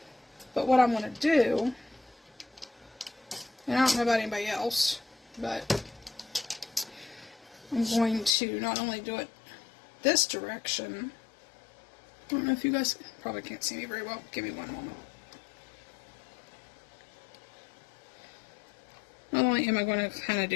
But what I'm going to do, and I don't know about anybody else, but I'm going to not only do it this direction. I don't know if you guys probably can't see me very well. Give me one moment. Not only am I going to kind of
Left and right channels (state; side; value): drops out; right; at 8.3 s